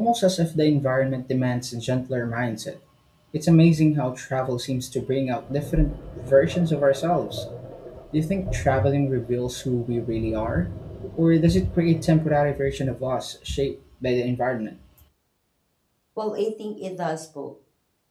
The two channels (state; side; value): identical; both; correlation 1.00